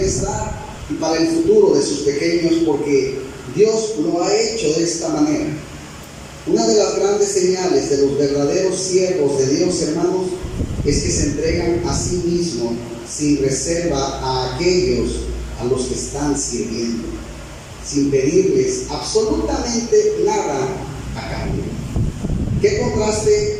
y para el futuro de sus pequeños, porque Dios lo ha hecho de esta manera. Una de las grandes señales de los verdaderos siervos de Dios, hermanos, es que se entregan a sí mismos sin reserva a aquellos a los que están sirviendo, sin pedirles absolutamente nada a cambio. ¿Qué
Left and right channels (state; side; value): identical; both; correlation 1.00